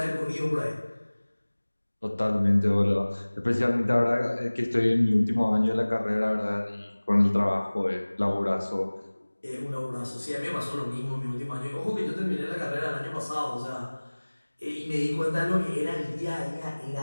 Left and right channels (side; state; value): both; inverted; correlation -1.00